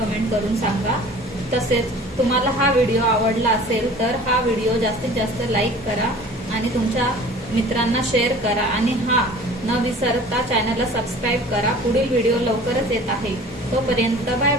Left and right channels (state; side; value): normal; both; correlation 0.45